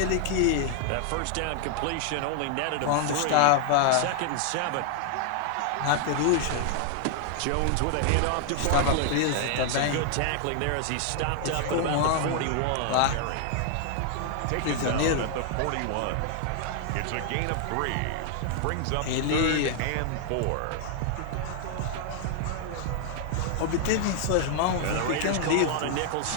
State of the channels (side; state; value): both; different; correlation 0.00